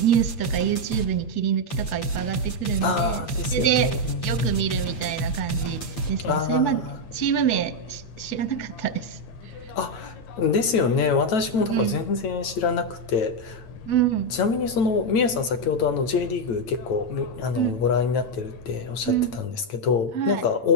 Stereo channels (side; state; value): right; late; 9.0 ms